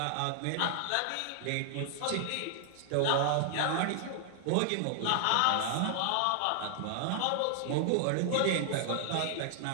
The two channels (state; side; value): different; both; correlation 0.00